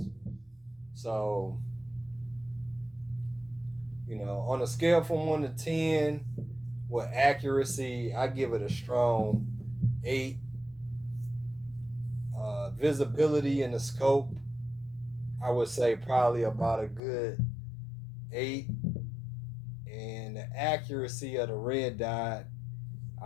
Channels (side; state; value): right; drops out; at 17.0 s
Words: So, you know, on a scale from 1 to 10, with accuracy, I give it a strong 8. Visibility in the scope, I would say probably about a good 8. And the accuracy of the red dot,